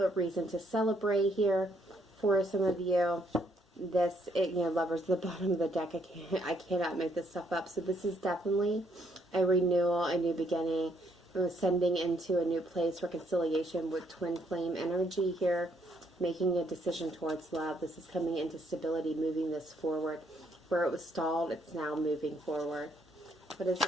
a reason to celebrate here for some of you. This, Lovers at the bottom of the deck. I cannot make this stuff up. So this is definitely a renewal, a new beginning, ascending into a new place, reconciliation with twin flame energy here, making a decision towards love. This is coming into stability, moving this forward. Where it was stalled, it's now moving forward. What is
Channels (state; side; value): normal; both; correlation 0.71